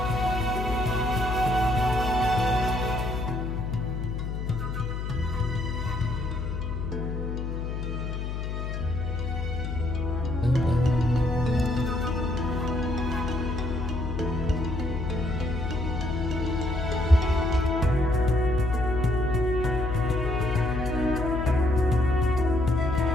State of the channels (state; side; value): noise; left; hum, 3 dB below the sound